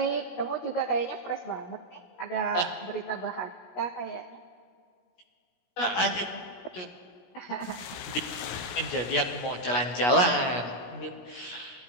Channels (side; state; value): right; late; 17 ms